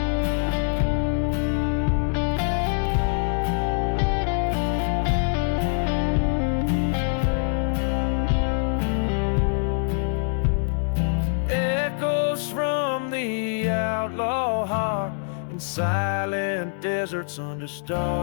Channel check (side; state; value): right; silent; digital silence